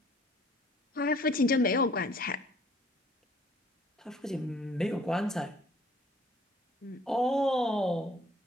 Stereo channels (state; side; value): normal; both; correlation 0.57